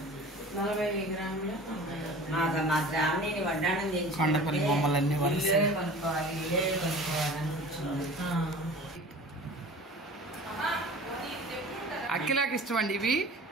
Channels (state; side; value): normal; both; correlation 0.41